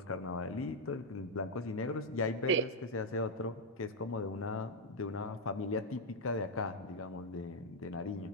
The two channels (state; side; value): normal; both; correlation 0.00